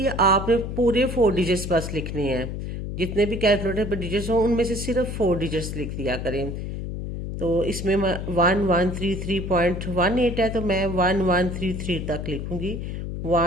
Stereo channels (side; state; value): left; noise; hum, 5 dB below the sound